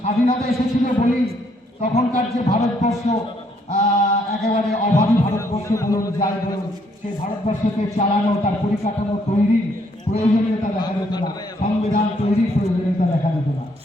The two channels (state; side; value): normal; both; correlation 0.69